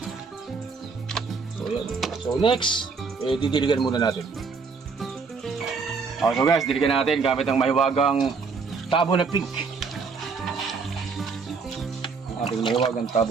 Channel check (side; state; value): left; quieter; 4.9 dB